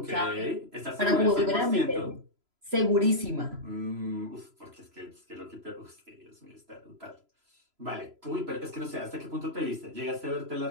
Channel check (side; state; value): left; late; 3.0 ms